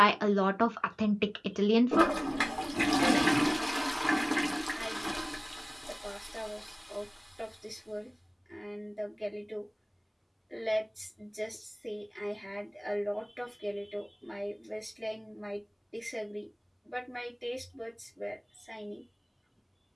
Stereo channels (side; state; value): both; identical; correlation 1.00